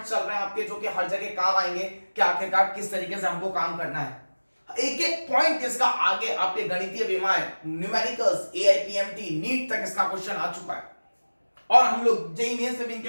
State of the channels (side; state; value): both; inverted; correlation -1.00